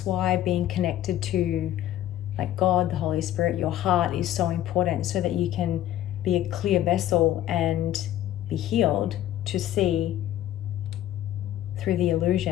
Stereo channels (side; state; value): right; quieter; 12.9 dB